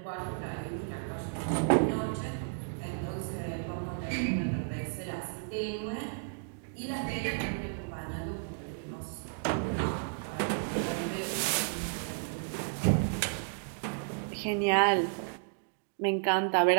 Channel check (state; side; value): silent; left; digital silence